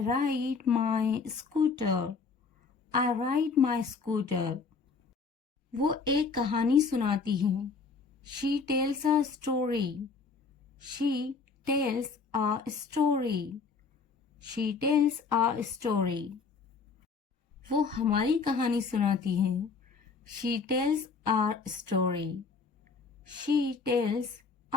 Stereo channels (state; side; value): quieter; right; 4.8 dB